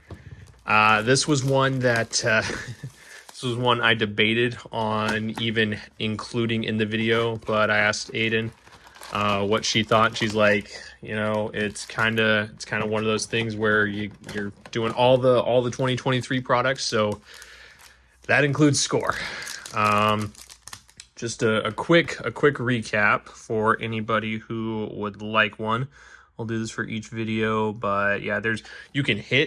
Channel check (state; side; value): identical; both; correlation 1.00